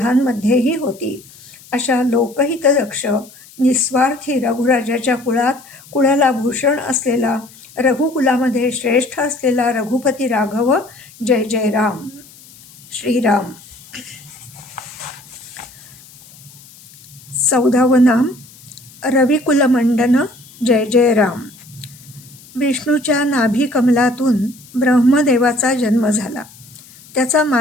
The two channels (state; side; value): noise; left; hiss, 23 dB below the sound